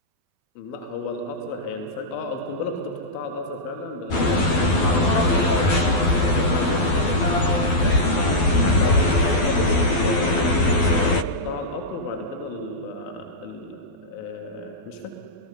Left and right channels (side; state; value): right; late; 12 ms